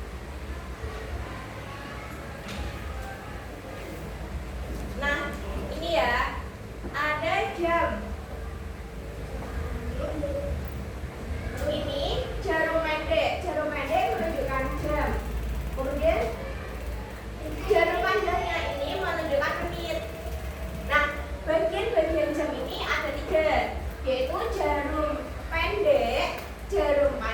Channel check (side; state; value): both; identical; correlation 1.00